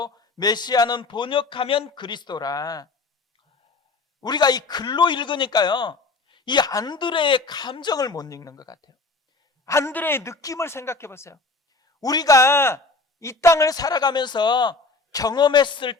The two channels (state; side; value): quieter; right; 3.7 dB